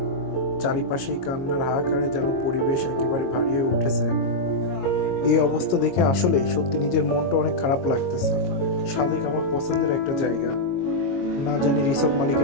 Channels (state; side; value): late; right; 22 ms